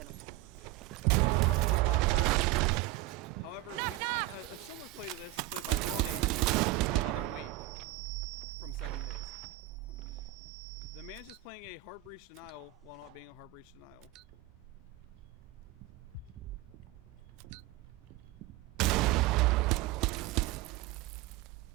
the rush is now prepped. However, we've seen a similar play to this played by Roddy the other week from 7 Days. The man's just playing a hard breach denial while not being a hard breach denial.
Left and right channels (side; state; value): left; quieter; 16.5 dB